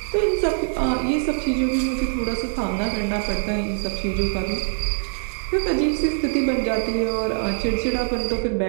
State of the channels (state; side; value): silent; left; 63 dB below the other